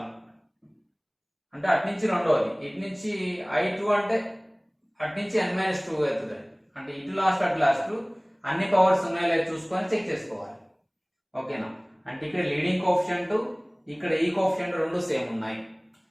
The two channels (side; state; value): both; identical; correlation 1.00